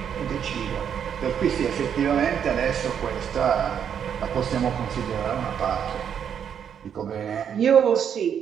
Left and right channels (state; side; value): quieter; left; 8.3 dB